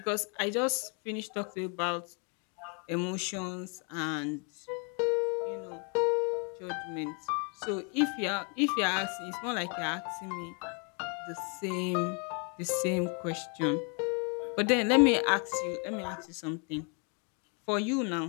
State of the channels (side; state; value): right; quieter; 36.7 dB